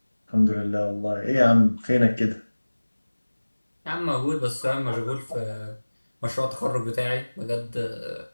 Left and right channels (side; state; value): both; inverted; correlation -1.00